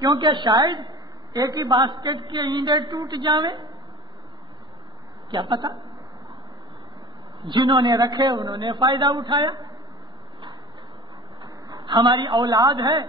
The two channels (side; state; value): both; normal; correlation 0.39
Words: شاید ایک ہی باسکٹ کے انڈے ٹوٹ جاویں, کیا پتا. جنہوں نے رکھے انہوں نے فائدہ اٹھایا. ہماری اولاد ہے